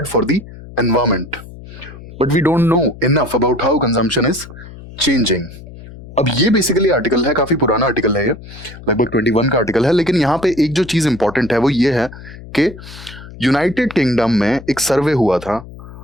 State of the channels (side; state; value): left; noise; hum, 16 dB below the sound